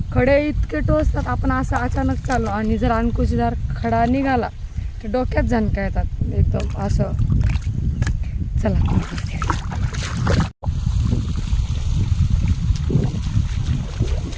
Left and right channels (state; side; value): identical; both; correlation 1.00